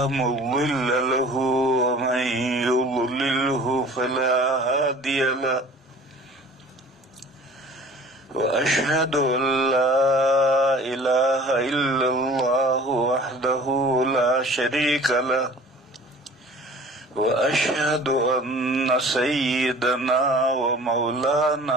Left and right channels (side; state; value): both; normal; correlation 0.46